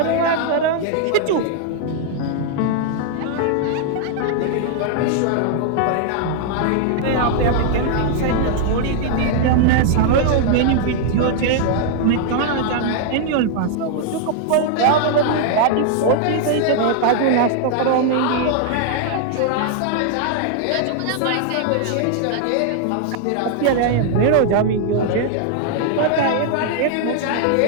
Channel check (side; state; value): both; different; correlation 0.00